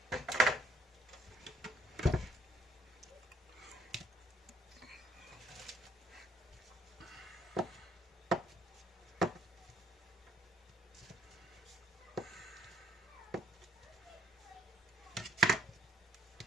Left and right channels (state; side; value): normal; both; correlation 0.66